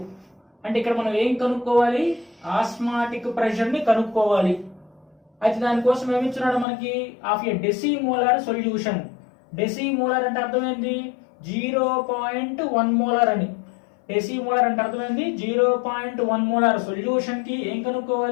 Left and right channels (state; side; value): drops out; right; at 6.7 s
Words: అంటే ఇక్కడ మనం ఏం కనుక్కోవాలి, ఆస్మాటిక్ ప్రెషర్ ని కనుక్కోవాలి. అయితే దానికోసం ఏమిచ్చున్నాడు మనకి, ఆఫ్ ఏ డెసిమోలార్ సొల్యూషన్. డెసిమోలార్ అంటే అర్థమైంది 0.1 మోలార్ అని. డెసిమోలార్ అంటే అర్థమైంది 0.1 మోలార్ సొల్యూషన్ కి ఏం